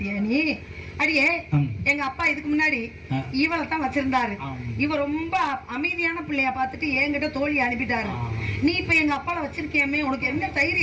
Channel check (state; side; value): identical; both; correlation 1.00